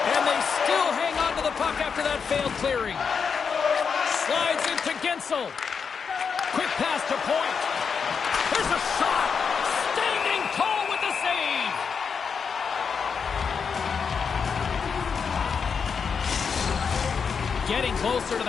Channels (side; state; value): right; quieter; 6.1 dB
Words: they still hang on to the puck after that failed clearing. Slides into Gensel. Quick pass to Point. There's a shot. Standing tall with the save. Getting closer to